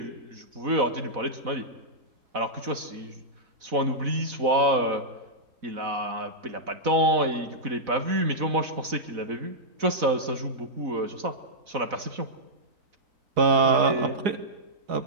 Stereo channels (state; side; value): late; left; 4.0 ms